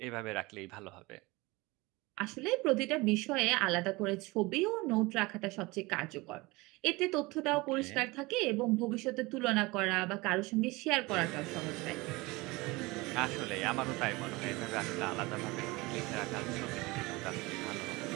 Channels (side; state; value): left; quieter; 23.0 dB